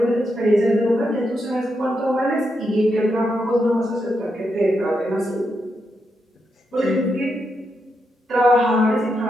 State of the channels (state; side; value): normal; both; correlation 0.83